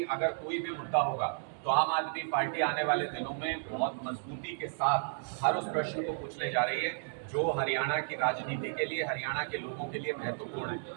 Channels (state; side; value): silent; left; digital silence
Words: अगर कोई भी मुद्दा होगा तो आम आदमी पार्टी आने वाले दिनों में बहुत मजबूती के साथ हर उस प्रश्न को पूछने जा रही है जो हरियाणा की राजनीति के लिए, हरियाणा के लोगों के लिए महत्वपूर्ण